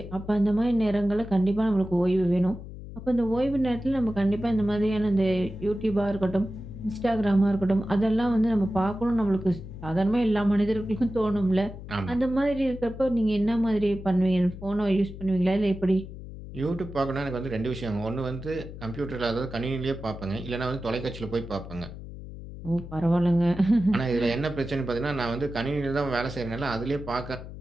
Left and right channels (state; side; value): noise; left; hum, 12 dB below the sound